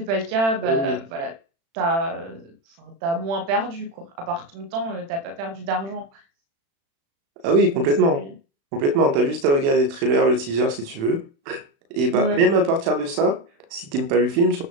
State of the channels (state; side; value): late; left; 36 ms